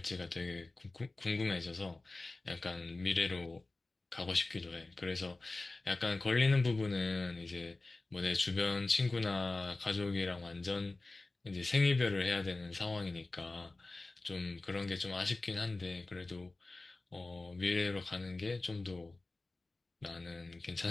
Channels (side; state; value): right; quieter; 3.2 dB